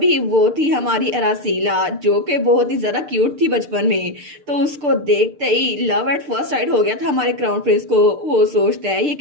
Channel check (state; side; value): late; left; 6.7 ms